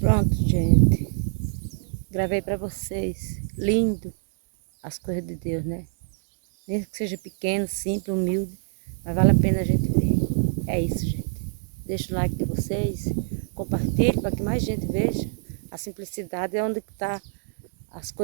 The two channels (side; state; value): left; silent; 62 dB below the other